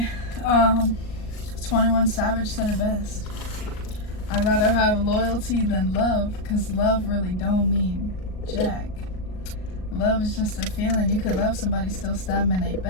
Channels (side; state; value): right; late; 38 ms